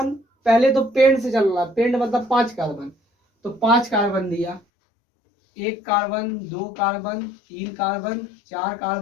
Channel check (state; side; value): drops out; right; at 4.6 s